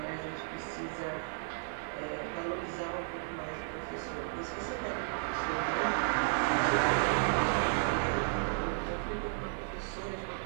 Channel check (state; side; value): silent; left; digital silence